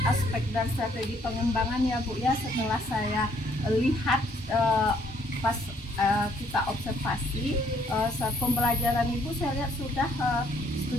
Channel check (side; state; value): both; normal; correlation 0.66